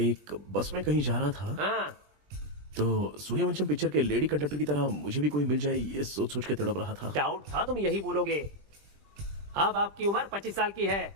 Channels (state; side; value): late; left; 20 ms